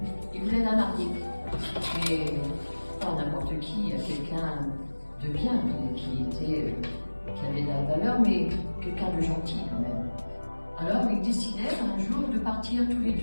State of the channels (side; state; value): both; inverted; correlation -1.00